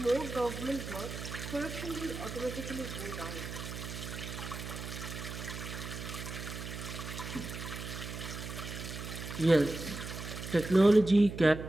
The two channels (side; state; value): right; noise; hum, 8 dB below the sound